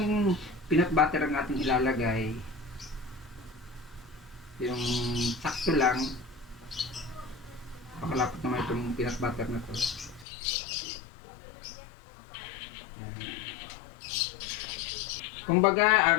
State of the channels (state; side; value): drops out; right; at 10.2 s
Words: peanut butter ang ating ilalagay. Yung sakto lang. Pakalapot naman itong peanut butter na to. Kumbaga,